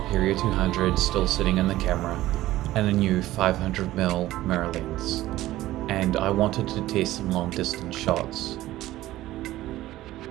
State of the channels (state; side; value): quieter; left; 15.7 dB